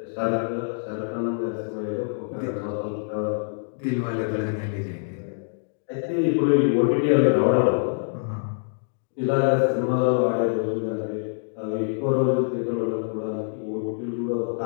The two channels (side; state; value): right; silent; digital silence